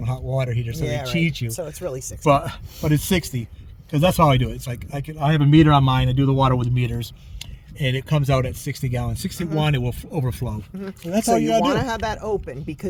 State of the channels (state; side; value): identical; both; correlation 1.00